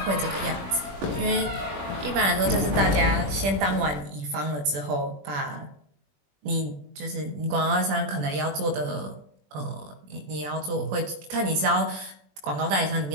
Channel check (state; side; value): late; left; 21 ms